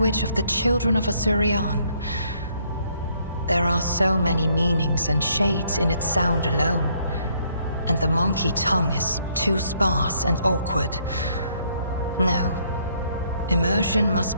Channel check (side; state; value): both; inverted; correlation -0.68